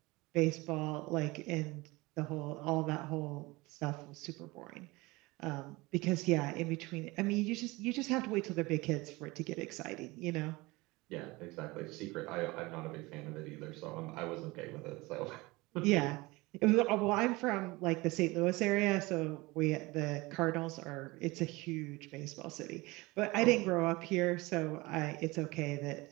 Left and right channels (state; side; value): quieter; left; 22.5 dB